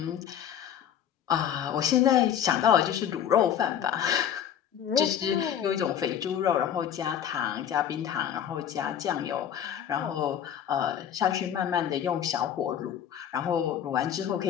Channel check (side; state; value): right; quieter; 9.4 dB